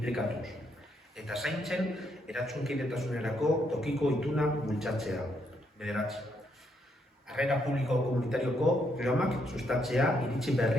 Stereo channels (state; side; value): normal; both; correlation 0.75